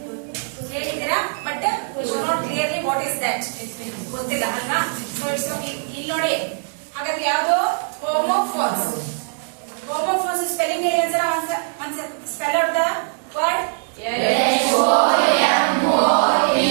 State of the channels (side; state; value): left; silent; digital silence